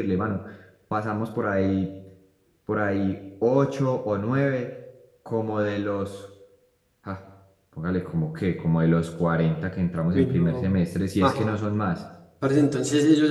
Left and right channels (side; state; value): both; identical; correlation 1.00